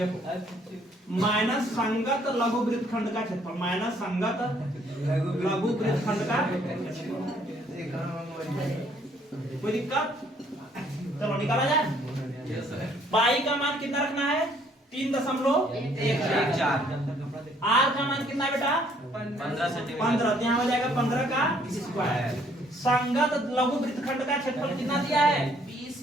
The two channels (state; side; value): normal; both; correlation 0.64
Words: माइनस संगत लघु वृत्तखंड का क्षेत्रफल, माइनस संगत लघु वृत्तखंड का क्षेत्रफल। कोई दिक्कत? चलो निकाला जाए। पाई का मान कितना रखना है? 3.14। आर का मान कितना है बेटा? 15 सेंटीमीटर। 15, तो यहाँ हो जाएगा 15 का स्क्वायर। संगत लघु वृत्तखंड का क्षेत्रफल कितना दिया है?